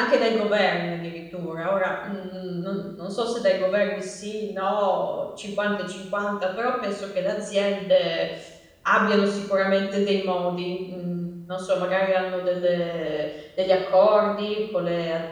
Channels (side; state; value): both; identical; correlation 1.00